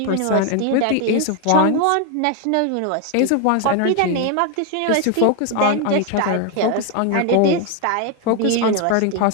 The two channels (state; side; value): different; both; correlation 0.01